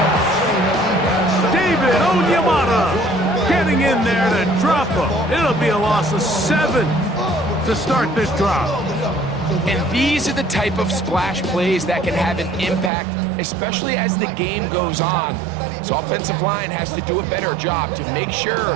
David Onyemata getting in there to drop him. It'll be a loss of 7 to start this drive. And these are the type of splash plays that can have an impact, especially as the game goes on. So offensive line has to do a better job to make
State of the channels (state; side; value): drops out; left; at 12.9 s